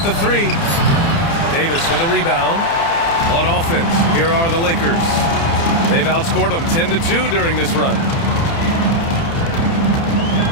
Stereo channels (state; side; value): late; right; 30 ms